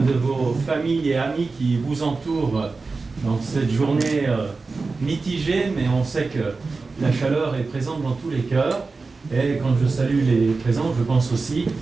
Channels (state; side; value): quieter; left; 4.0 dB